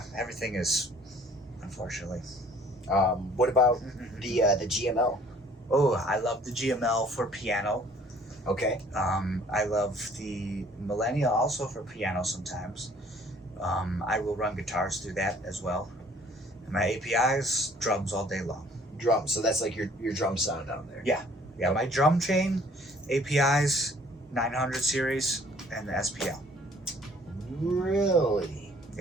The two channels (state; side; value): normal; both; correlation 0.56